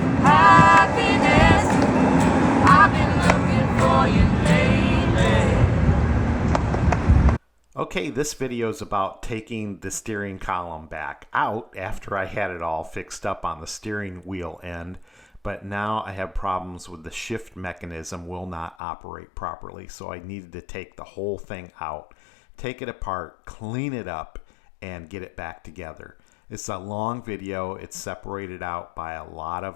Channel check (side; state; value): right; drops out; at 18.8 s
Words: Happiness, I've been looking for you lately. Okay, this video is about taking the steering column back out after I had it all fixed up on the steering wheel end. But now I have problems with the shift mechanism will not operate properly. So I needed to take the whole thing out, take it apart, clean it up, and get it back together. It's a long video. It's separated out by a lot